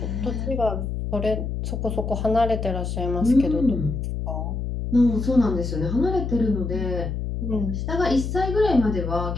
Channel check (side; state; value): left; noise; hum, 3 dB below the sound